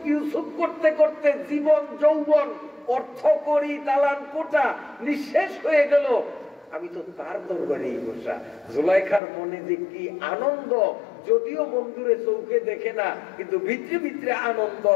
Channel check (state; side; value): drops out; right; at 9.2 s